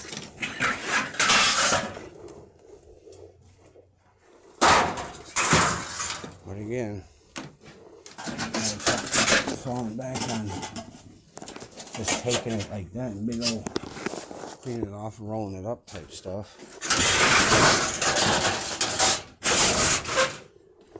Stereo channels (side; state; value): both; identical; correlation 1.00